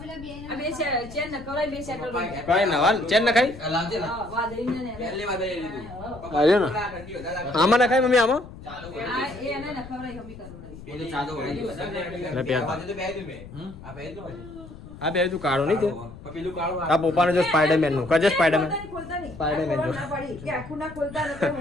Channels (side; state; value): left; noise; rumble, 15 dB below the sound